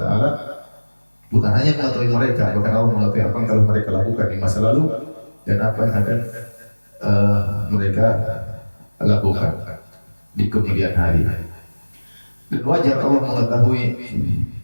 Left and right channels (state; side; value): inverted; both; correlation -1.00